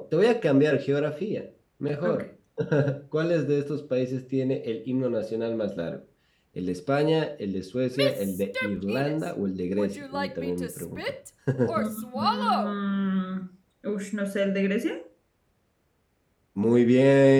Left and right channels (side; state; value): both; identical; correlation 1.00